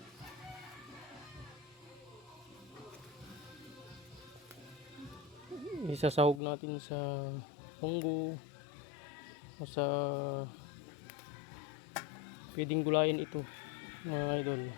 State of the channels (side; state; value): right; drops out; at 6.4 s